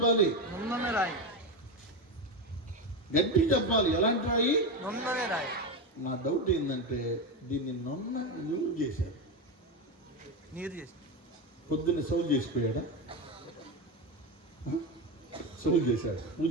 గడ్డి చెప్పాలి. ఎలాంటి రాయి? నా డౌట్ ఏంటంటే దీన్ని నున్న యూజ్ చేశాడు. పొద్దున్న సౌలు చేసిపోయాడా? సౌలు చేశాడు.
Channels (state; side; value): normal; both; correlation 0.15